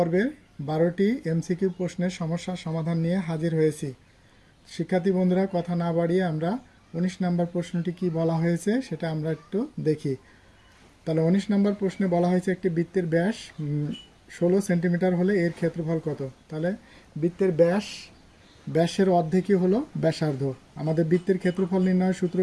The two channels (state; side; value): identical; both; correlation 1.00